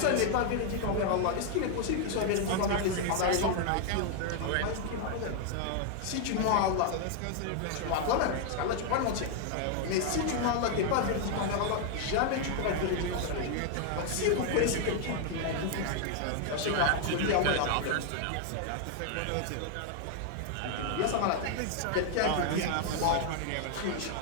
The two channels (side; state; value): both; different; correlation 0.00